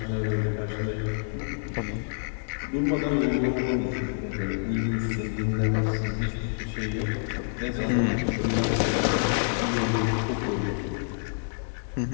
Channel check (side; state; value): right; silent; 60 dB below the other